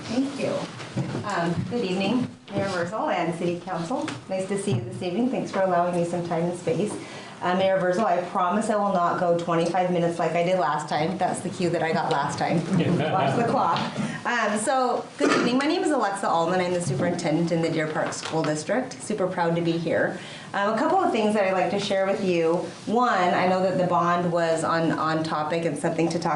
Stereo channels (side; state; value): both; identical; correlation 1.00